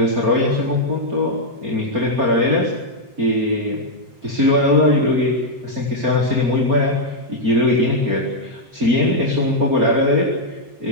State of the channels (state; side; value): late; left; 7.6 ms